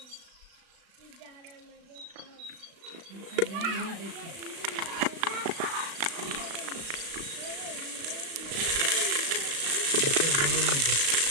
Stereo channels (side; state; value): left; late; 36 ms